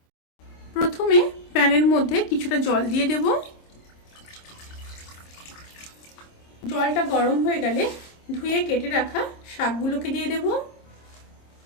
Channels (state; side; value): late; right; 26 ms